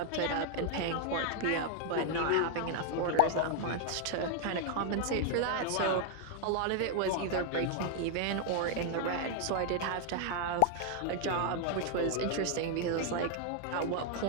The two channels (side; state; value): both; different; correlation 0.00